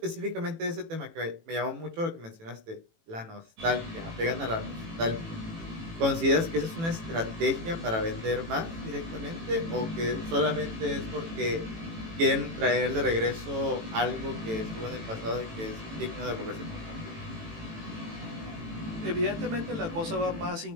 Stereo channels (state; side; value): late; left; 18 ms